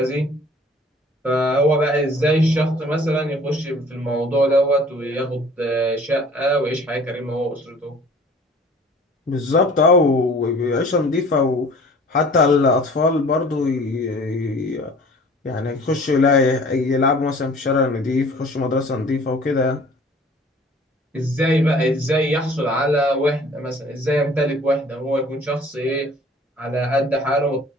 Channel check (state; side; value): normal; both; correlation 0.50